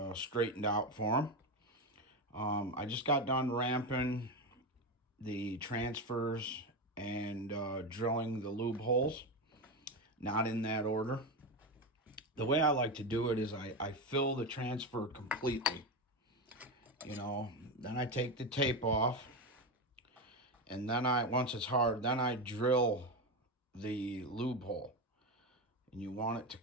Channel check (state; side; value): normal; both; correlation 0.15